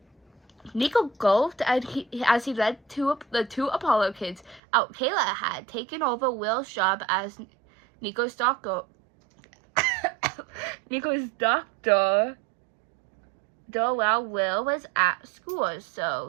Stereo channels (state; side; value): drops out; left; at 4.6 s